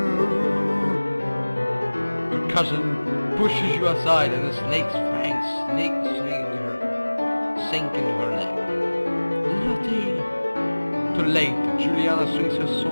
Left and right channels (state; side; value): inverted; both; correlation -1.00